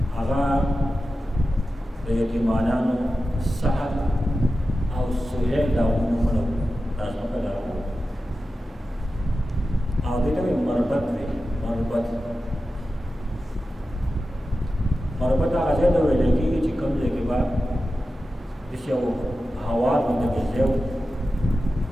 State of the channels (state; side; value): normal; both; correlation 0.93